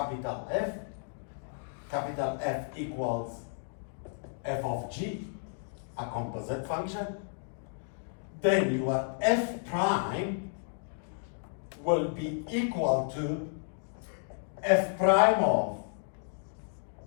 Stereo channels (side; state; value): right; silent; digital silence